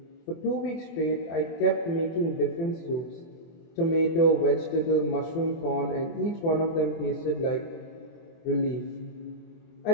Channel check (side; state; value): right; late; 24 ms